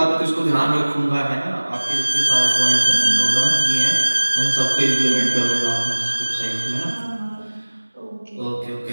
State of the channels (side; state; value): both; inverted; correlation -1.00